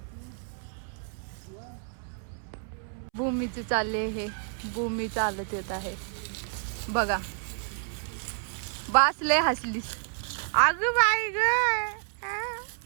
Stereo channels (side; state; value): left; silent; 58 dB below the other